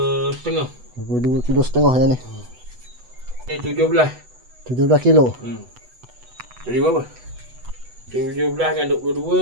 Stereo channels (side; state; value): left; late; 8.0 ms